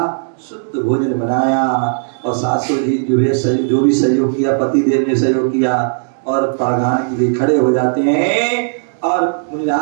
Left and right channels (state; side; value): silent; left; digital silence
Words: शुद्ध भोजन बनाया, और सासू जी जो भी सहयोग किया, पति देव ने सहयोग किया, और पढ़ाने के लिए खड़े हो जाते हैं। और